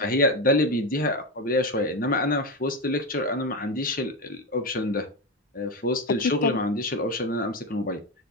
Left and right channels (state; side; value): normal; both; correlation 0.15